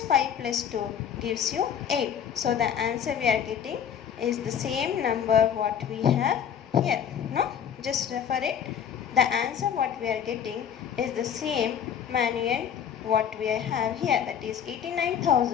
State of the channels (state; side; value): quieter; right; 8.4 dB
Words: 5 plus 2 gives you 8. So the answer we are getting is the same number what we have here. No? Just refer it. The answer what we are getting is the same manual what we have here. That is